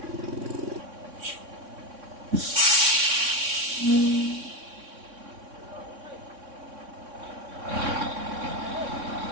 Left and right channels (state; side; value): late; left; 3.6 ms